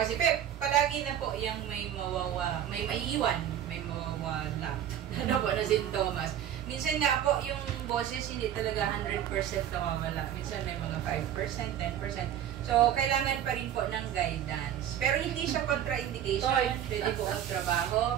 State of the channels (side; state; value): left; quieter; 10.4 dB